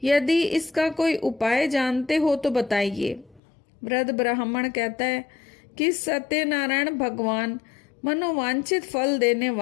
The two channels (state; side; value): drops out; right; at 3.4 s